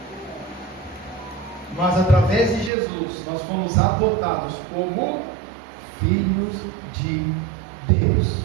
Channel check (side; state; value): left; drops out; at 2.7 s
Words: Mas através de Jesus, nós fomos adotados como filhos de Deus.